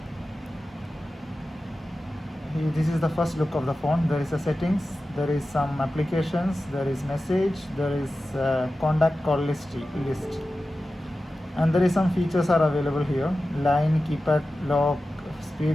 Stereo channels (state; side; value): normal; both; correlation 0.94